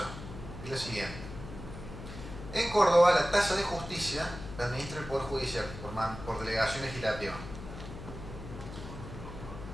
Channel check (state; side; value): noise; left; hum, 11 dB below the sound